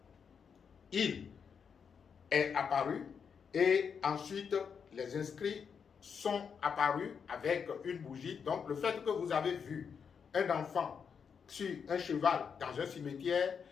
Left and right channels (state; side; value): quieter; right; 6.6 dB